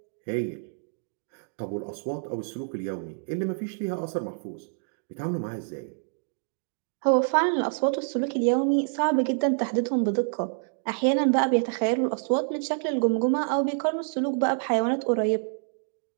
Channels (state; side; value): silent; left; digital silence